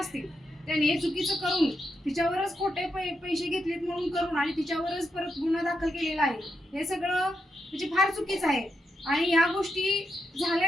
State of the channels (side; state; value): both; normal; correlation 0.84